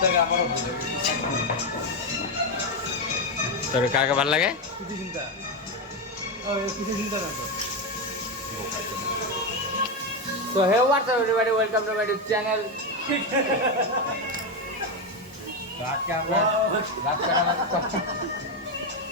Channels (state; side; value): normal; both; correlation 0.09